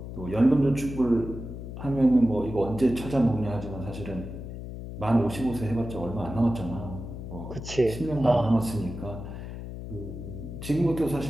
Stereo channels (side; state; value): left; noise; hum, 9 dB below the sound